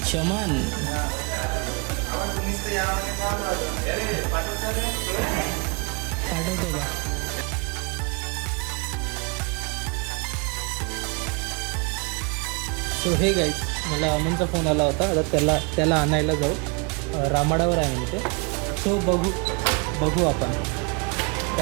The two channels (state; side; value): quieter; left; 31.8 dB